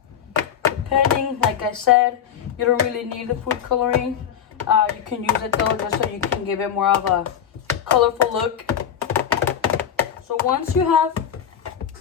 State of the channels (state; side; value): quieter; right; 8.9 dB